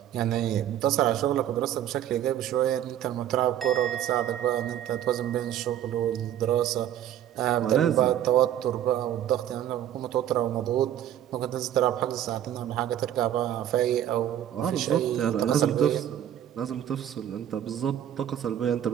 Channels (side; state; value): left; quieter; 11.0 dB